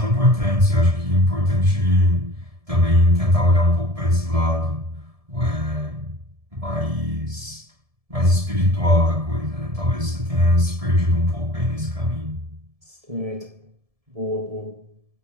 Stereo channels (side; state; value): left; late; 1.7 ms